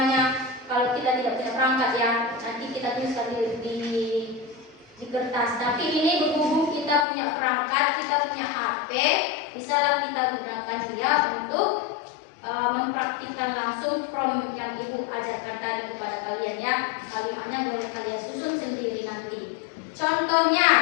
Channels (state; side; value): drops out; right; at 7.1 s